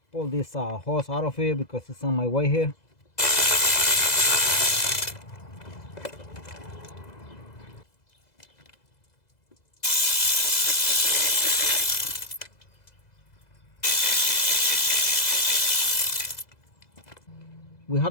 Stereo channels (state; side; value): late; right; 2.0 ms